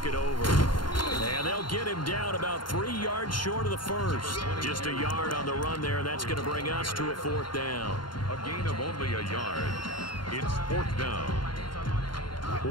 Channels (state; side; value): late; right; 0.72 ms